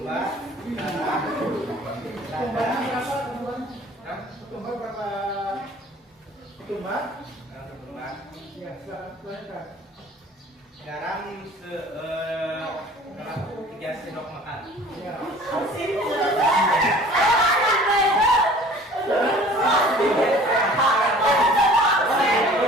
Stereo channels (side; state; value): both; normal; correlation 0.48